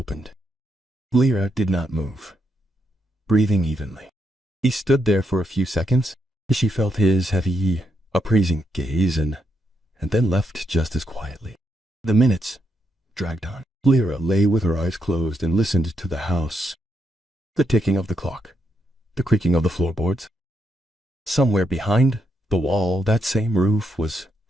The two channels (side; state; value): both; normal; correlation 0.80